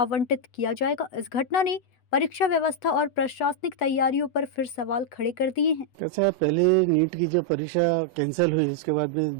किया जाएगा। इस घटना ने परीक्षा व्यवस्था और प्रशासनिक तैयारियों पर फिर सवाल खड़े कर दिए हैं। कैसा है, पहले नीट की जो परीक्षा कैंसिल हुई, उसके बाद में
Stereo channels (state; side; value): late; right; 8.0 ms